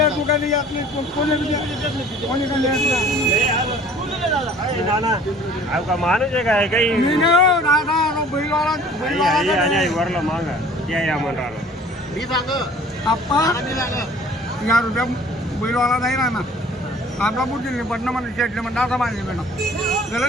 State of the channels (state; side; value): normal; both; correlation 0.50